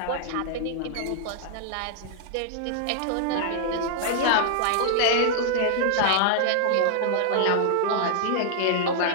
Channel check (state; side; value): different; both; correlation -0.01